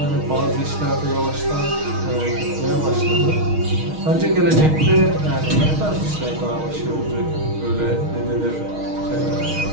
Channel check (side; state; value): left; late; 6.4 ms